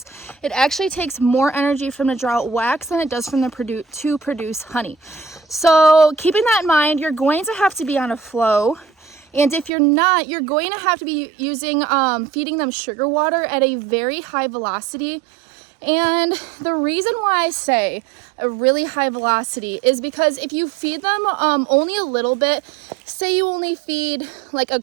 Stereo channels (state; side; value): drops out; left; at 9.7 s